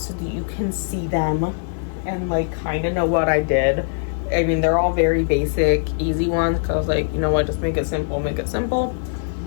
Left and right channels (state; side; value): silent; right; digital silence